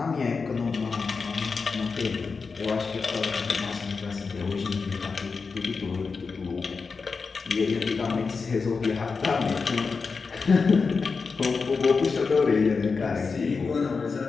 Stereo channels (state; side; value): quieter; right; 4.8 dB